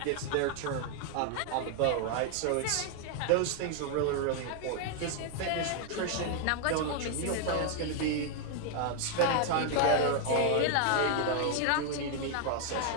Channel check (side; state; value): both; different; correlation 0.00